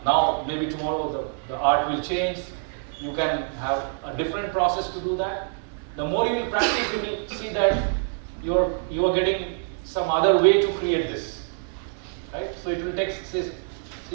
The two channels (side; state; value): left; silent; 58 dB below the other